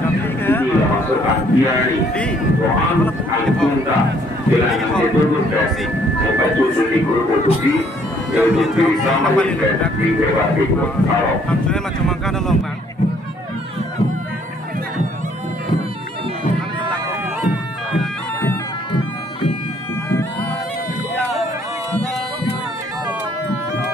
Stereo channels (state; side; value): normal; both; correlation 0.63